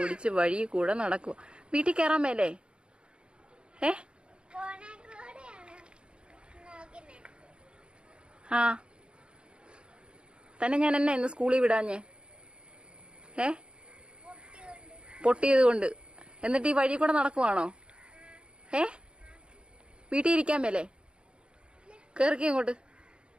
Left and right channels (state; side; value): late; left; 0.054 ms